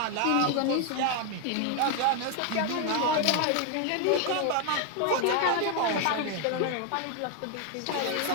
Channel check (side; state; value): both; different; correlation 0.01